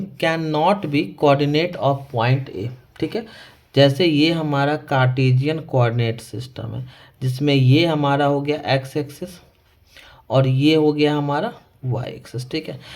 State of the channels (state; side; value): identical; both; correlation 1.00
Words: can not be coordinate of point A, ठीक है। जैसे ये हमारा कार्टेशियन कोऑर्डिनेट सिस्टम है, जिसमें ये हमारा हो गया एक्स एक्सिस और ये हो गया हमारा वाई एक्सिस, ठीक है।